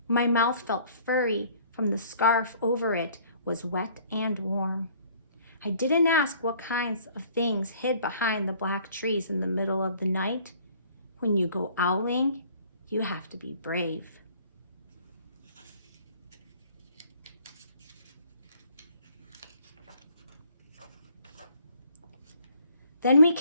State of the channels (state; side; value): inverted; both; correlation -0.57